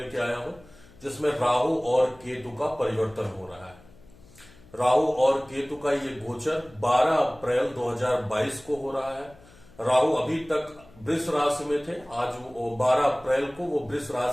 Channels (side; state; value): left; noise; hum, 25 dB below the sound